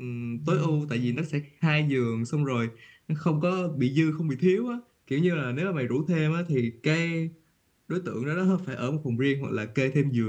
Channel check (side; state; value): both; identical; correlation 1.00